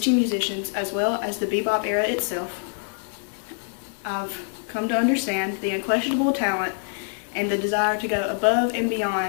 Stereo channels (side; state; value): right; silent; 62 dB below the other